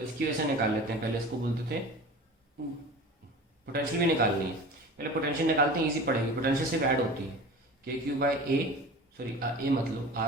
इसकी वजह से निकाल लेते हैं. पहले इसको बोलते थे पोटेंशियल भी निकालनी है. पहले पोटेंशियल निकालते हैं, इजी पड़ेगी. पोटेंशियल सिर्फ ऐड होती है के क्यू बाई ए, सॉरी ए मत लो,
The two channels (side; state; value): both; normal; correlation 0.37